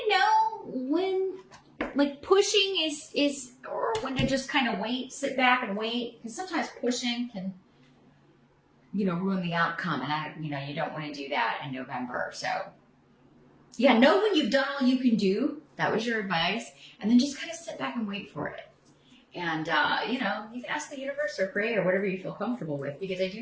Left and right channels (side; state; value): both; identical; correlation 1.00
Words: know when like pushing is or when to just kind of wait, sit back and wait, because sometimes pushing can ruin the outcome, and you don't want to do that in November. So yeah, know when you've done all you can do. That was your advice, and then just kind of sit back and wait for it. And, you can ask the universe or pray or whatever you feel comfortable with, because I